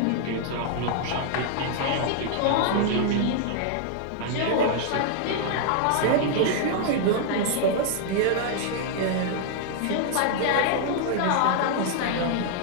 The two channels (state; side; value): different; both; correlation -0.01